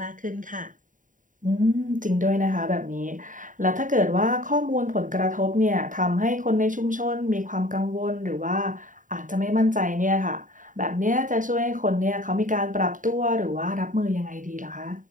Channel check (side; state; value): left; late; 0.38 ms